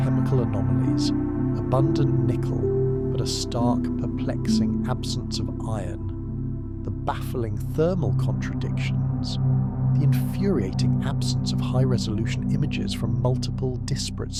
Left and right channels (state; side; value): identical; both; correlation 1.00